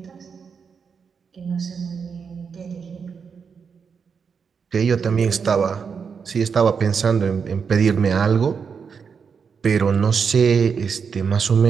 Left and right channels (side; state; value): left; quieter; 6.1 dB